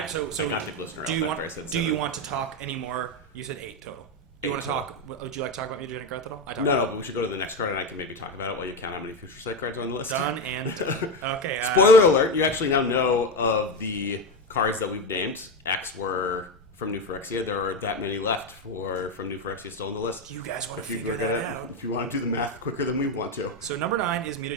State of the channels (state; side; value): normal; both; correlation 0.13